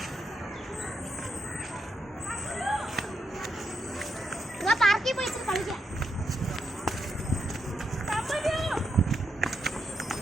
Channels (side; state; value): both; normal; correlation 0.81